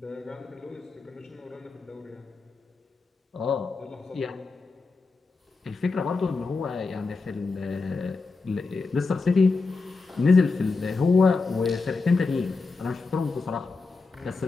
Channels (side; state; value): right; quieter; 4.1 dB